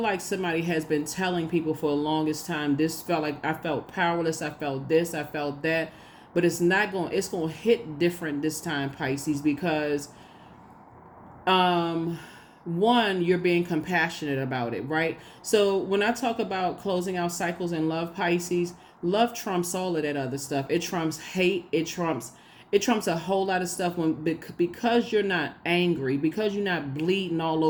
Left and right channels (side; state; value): both; identical; correlation 1.00